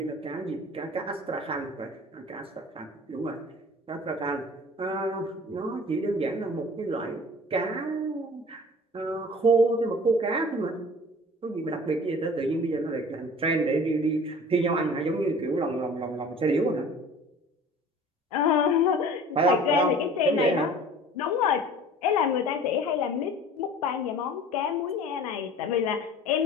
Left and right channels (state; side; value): normal; both; correlation 0.44